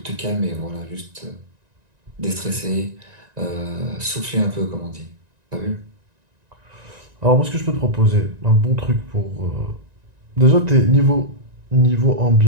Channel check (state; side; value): late; left; 1.9 ms